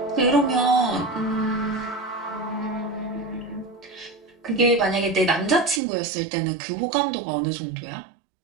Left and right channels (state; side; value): drops out; left; at 5.8 s